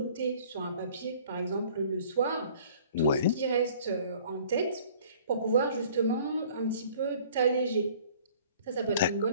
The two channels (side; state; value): both; inverted; correlation -0.52